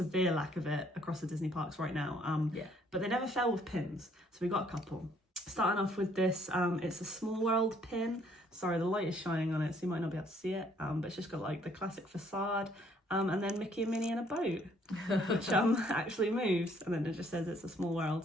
lack of it across the Disney parks right now. But they never fail with pins, so we got a couple. Starting off with this, it's a Small World pin. Sorry, the light is shining on it, so you might not be able to see it. But it's just got like the classic facade, and then Mickey and Minnie in a boat, which actually moves, and then it just says it's a Small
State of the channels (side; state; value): both; normal; correlation 0.64